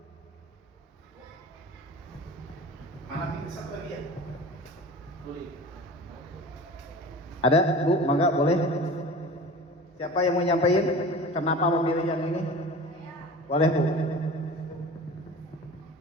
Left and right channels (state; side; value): normal; both; correlation 0.38